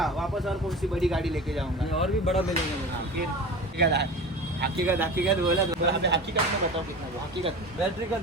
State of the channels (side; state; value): both; normal; correlation 0.33